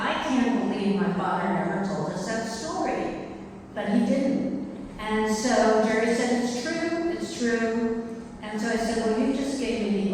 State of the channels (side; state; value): both; identical; correlation 1.00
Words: can't believe my father never told us that story. But he didn't. And so Jerry said, it's true. And so I said, well, you just gave me